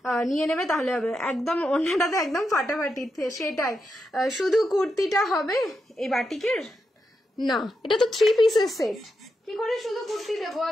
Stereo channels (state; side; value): normal; both; correlation 0.86